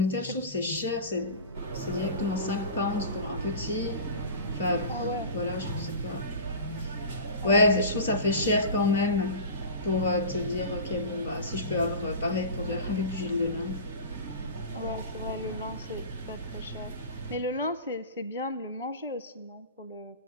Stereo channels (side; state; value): both; inverted; correlation -0.34